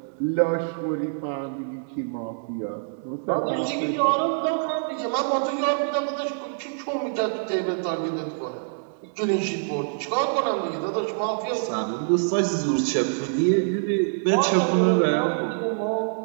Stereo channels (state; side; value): silent; left; 62 dB below the other